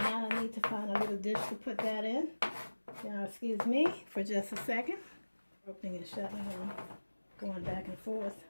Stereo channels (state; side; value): inverted; both; correlation -1.00